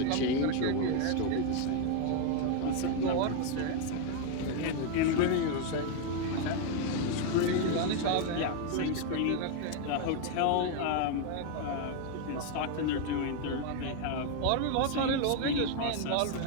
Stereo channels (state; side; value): different; both; correlation 0.01